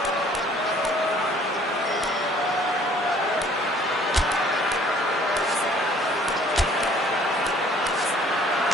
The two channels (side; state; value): both; normal; correlation 0.56